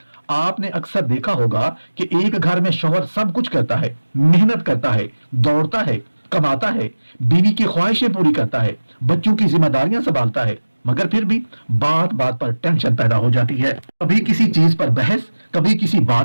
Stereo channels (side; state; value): both; inverted; correlation -1.00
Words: آپ نے اکثر دیکھا ہوگا کہ ایک گھر میں شوہر سب کچھ کرتا ہے، محنت کرتا ہے، دوڑتا ہے، کماتا ہے، بیوی کی خواہشیں پوری کرتا ہے، بچوں کی ذمہ داریاں سنبھالتا ہے، مگر پھر بھی بات بات پر ٹینشن پیدا ہو جاتی ہے۔ کبھی کسی چیز پر بحث، کبھی کسی